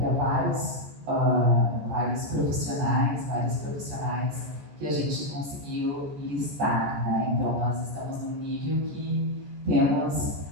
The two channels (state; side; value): late; left; 14 ms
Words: há vários profissionais que a gente conseguiu listar, né? Então nós estamos num nível que temos